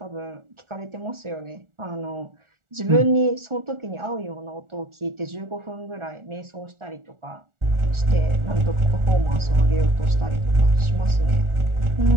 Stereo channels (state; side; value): late; left; 1.4 ms